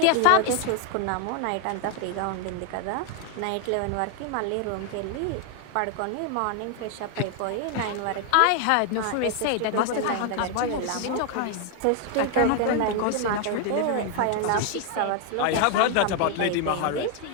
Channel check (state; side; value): different; both; correlation 0.00